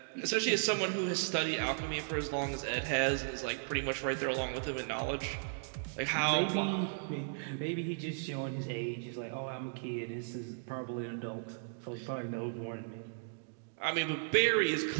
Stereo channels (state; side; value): silent; left; digital silence